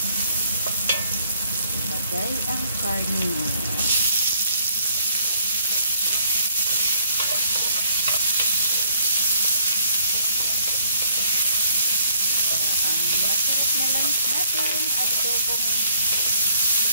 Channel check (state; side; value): inverted; both; correlation -0.64